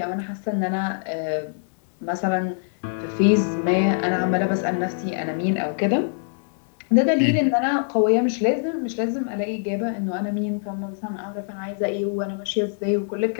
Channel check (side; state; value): right; silent; digital silence